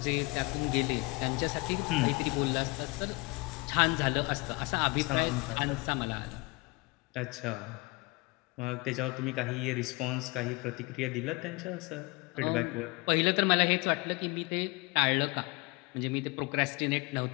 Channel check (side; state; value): right; quieter; 25.9 dB